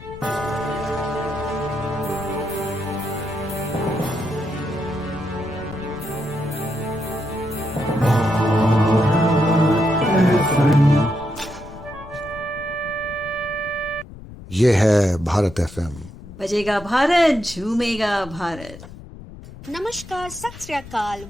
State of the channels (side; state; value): left; noise; rumble, 16 dB below the sound